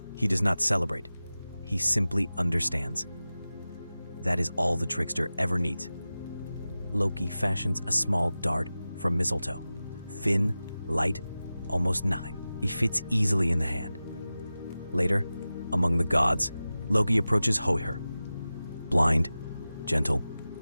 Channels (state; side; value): inverted; both; correlation -0.95